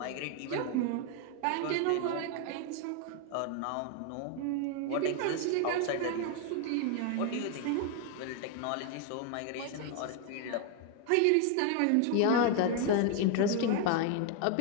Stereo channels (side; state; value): both; different; correlation 0.01